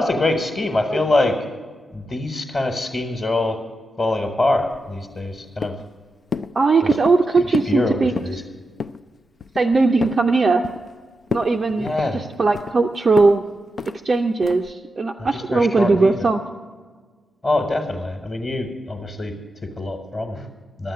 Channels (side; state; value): both; normal; correlation 0.88